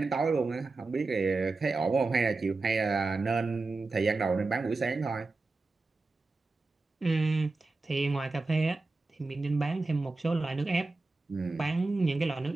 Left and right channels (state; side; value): quieter; left; 3.5 dB